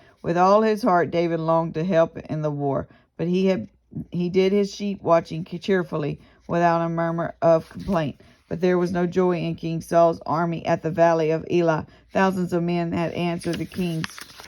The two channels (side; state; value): both; identical; correlation 1.00